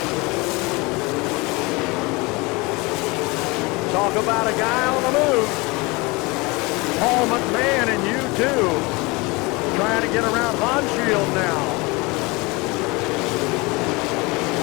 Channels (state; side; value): quieter; right; 25.1 dB